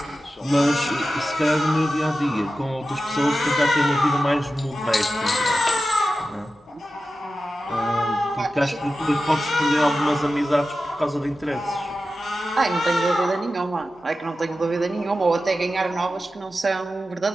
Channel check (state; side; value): normal; both; correlation 0.93